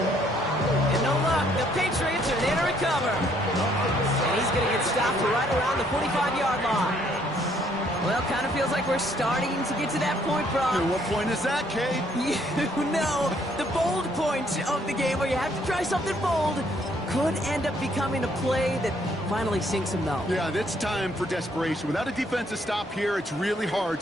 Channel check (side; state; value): both; normal; correlation 0.67